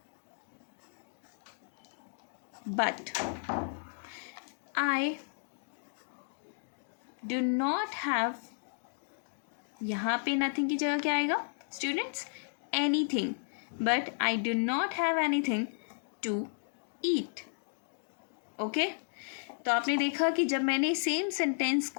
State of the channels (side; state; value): right; silent; digital silence